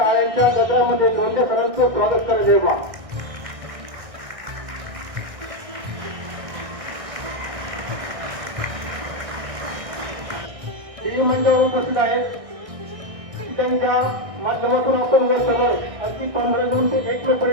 गजरामध्ये लोंढे सरांचं स्वागत करायचे बा. मंडळावर उपस्थित आहेत त्यांच्या माध्यमातून आपण वर सगळं अगदी 15 जून ते 1 मे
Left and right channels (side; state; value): left; late; 1.6 ms